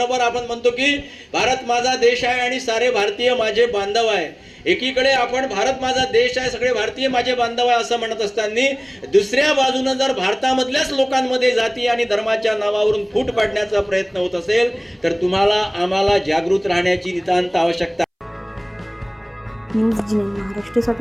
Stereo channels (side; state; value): both; identical; correlation 1.00